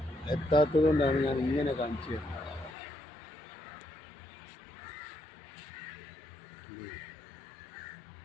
എത്താത്തത് കൊണ്ടാണ് ഞാൻ ഇങ്ങനെ കാണിച്ചു തരുന്നത്.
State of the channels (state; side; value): drops out; right; at 2.8 s